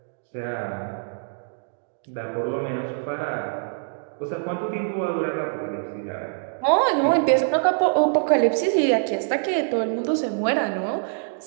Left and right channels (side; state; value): left; silent; digital silence